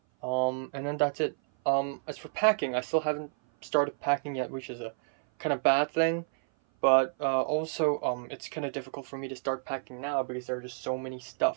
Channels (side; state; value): left; silent; 56 dB below the other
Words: And then that's it. As for packing, I still haven't started packing yet, which is a kind of bad thing. But also, it's kind of difficult for me to start packing now because there are just so many